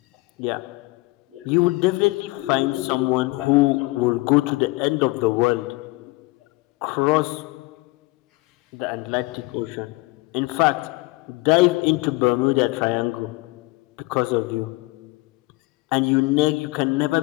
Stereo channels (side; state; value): right; quieter; 22.7 dB